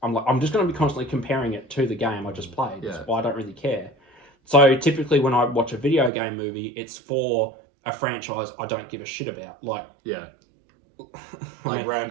just going to be constantly comparing it to the game I just played. Yeah. So I don't really care. So typically, when I watch a video game movie, it's for a franchise I don't give a shit about, like Yeah. I Like mean,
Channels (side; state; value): left; drops out; at 6.1 s